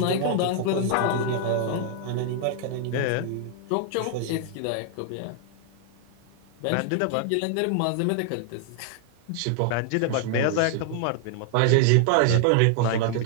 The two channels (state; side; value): different; both; correlation 0.00